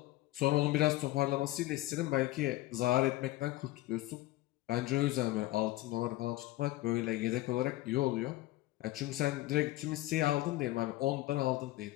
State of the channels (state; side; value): quieter; right; 17.4 dB